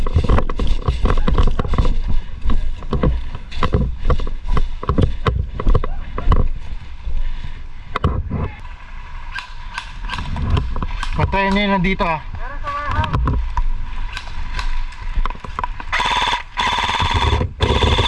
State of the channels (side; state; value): both; identical; correlation 1.00